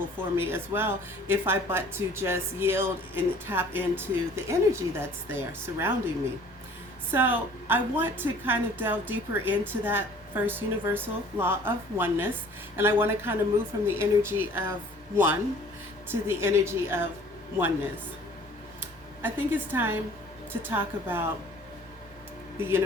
for me as well, if I but to just yield and tap into the energy that's there surrounding me. So I want to kind of delve deeper into that first universal law of oneness, and I want to kind of move from the energy of one to the energy of oneness. I think it's time to talk about the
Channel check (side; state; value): both; normal; correlation 0.51